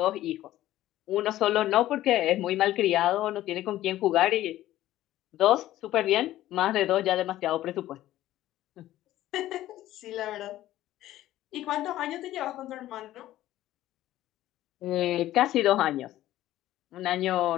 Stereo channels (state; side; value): quieter; right; 14.4 dB